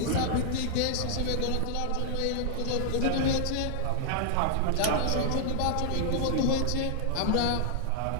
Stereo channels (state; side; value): different; both; correlation -0.01